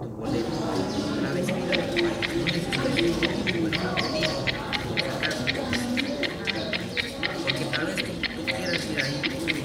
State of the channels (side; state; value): both; identical; correlation 1.00